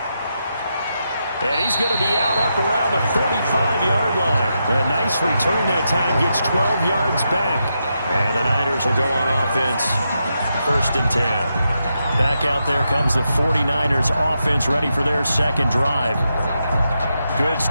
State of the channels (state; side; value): inverted; both; correlation -0.85